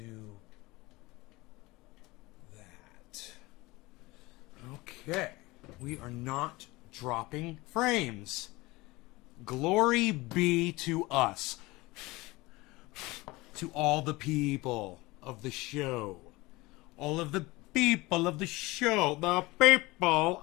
that. Okay. We are not dropping frames. Glory be to us. To all the people of the show. All of the people of the show. The people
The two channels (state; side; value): quieter; right; 21.7 dB